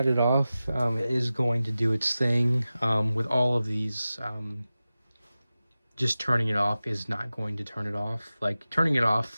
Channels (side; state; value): both; inverted; correlation -0.95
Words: it off, it is going to do its thing. With all of these, just turning it off is not going to turn it off. Like, turning it